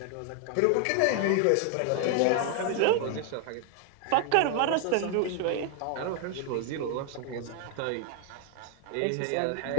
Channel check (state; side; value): different; both; correlation 0.00